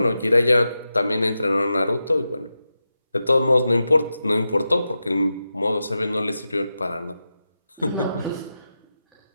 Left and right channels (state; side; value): inverted; both; correlation -0.90